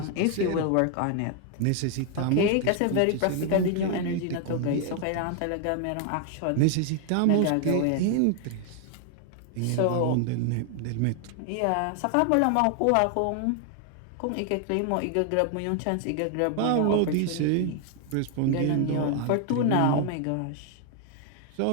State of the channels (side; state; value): both; different; correlation 0.00